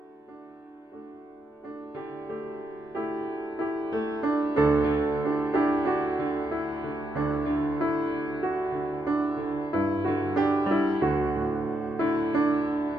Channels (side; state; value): both; normal; correlation 0.81